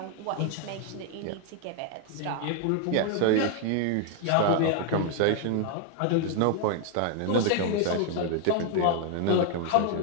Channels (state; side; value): different; both; correlation 0.00